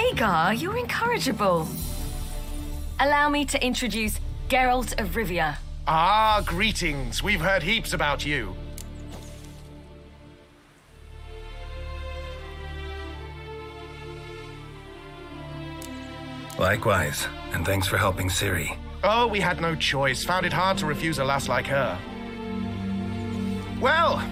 you're incorrigible. Allow me to introduce Geralt of Rivia. Ah, greetings. We've heard heaps about you. Likewise, and thanks for helping Ciri. Oh, we had no choice. Found it hard to refuse a lass like her. Well,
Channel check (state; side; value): identical; both; correlation 1.00